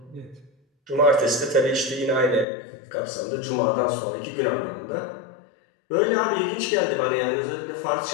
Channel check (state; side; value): drops out; right; at 2.5 s